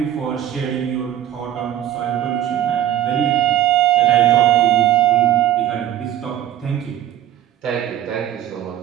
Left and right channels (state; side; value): quieter; left; 11.6 dB